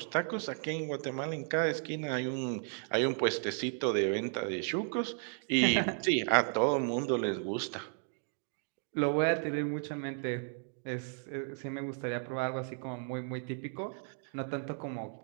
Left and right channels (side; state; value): left; silent; 55 dB below the other